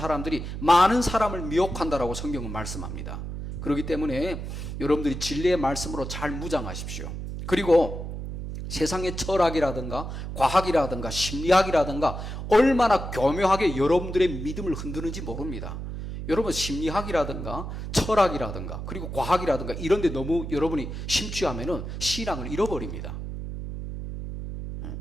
많은 사람을 미혹한다라고 성경은 말씀합니다. 그렇기 때문에 여러분들이 진리의 말씀으로 잘 무장하십시오. 그리고 세상의 철학이라든가 과학이라든가 심리학이라든가 얼마나 교묘하게 여러분들의 믿음을 흔드는지 모릅니다. 여러분, 심리학이라든가 철학이라든가 그리고 과학이라든가 이런 데 너무 여러분이 심취하면은 신앙을 잃어버립니다.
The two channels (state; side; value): noise; right; hum, 7 dB below the sound